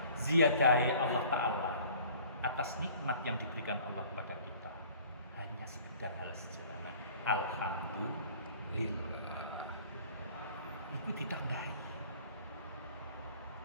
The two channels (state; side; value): inverted; both; correlation -0.50